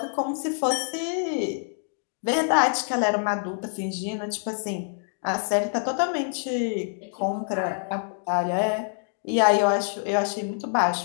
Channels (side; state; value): right; silent; digital silence